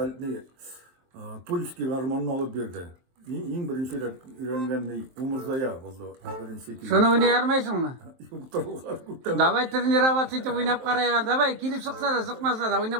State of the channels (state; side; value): late; left; 23 ms